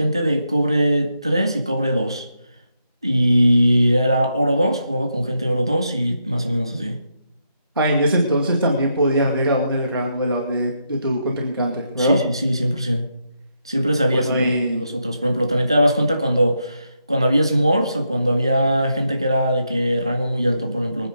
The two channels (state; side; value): inverted; both; correlation -0.81